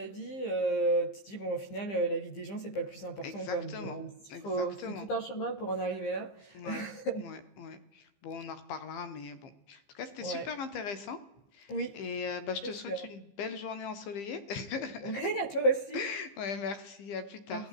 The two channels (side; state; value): right; late; 15 ms